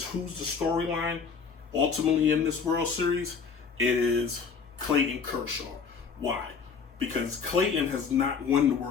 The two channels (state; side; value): quieter; right; 5.7 dB